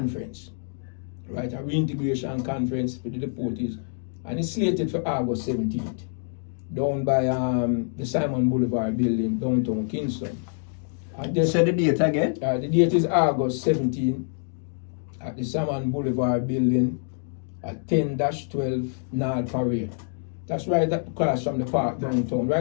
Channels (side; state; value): right; silent; digital silence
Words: right? A reintegration conference for the deportees, and it's slated for August 17th, down by the Simon Boulevard building, downtown Kingston. And Say the date again. the date is August 17th at the Simon Boulevard building at 10-12 North Parade. That's right across from the park downtown,